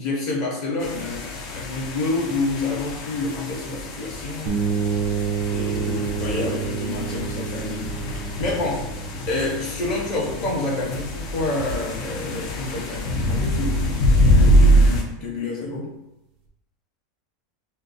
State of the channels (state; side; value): normal; both; correlation 0.40